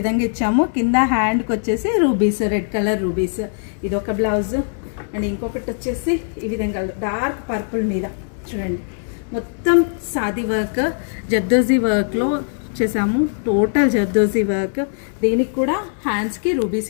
ఇచ్చాము. కింద హ్యాండ్కి వచ్చేసి రూబీస్, రెడ్ కలర్ రూబీస్. ఇది ఒక బ్లౌజ్. అండ్ ఇంకొకటి వచ్చేసి ఈ విధంగా డార్క్ పర్పుల్ మీద చూడండి, మొత్తం సాది వర్క్, జర్దోజీ వర్క్లో చేసాము. Total zardozi work. దీనికి కూడా హ్యాండ్స్కి రూబీస్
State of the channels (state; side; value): silent; right; digital silence